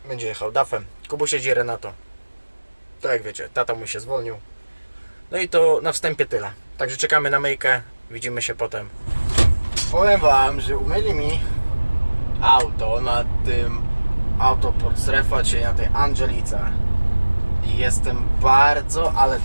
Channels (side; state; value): both; inverted; correlation -1.00